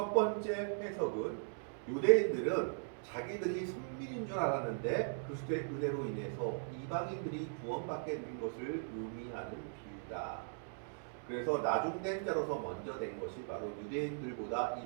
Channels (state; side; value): silent; left; digital silence